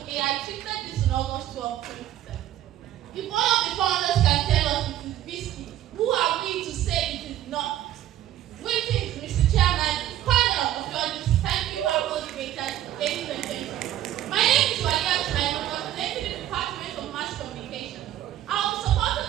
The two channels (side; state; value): left; quieter; 12.6 dB